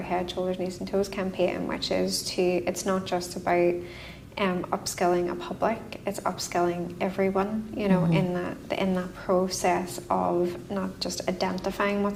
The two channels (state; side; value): identical; both; correlation 1.00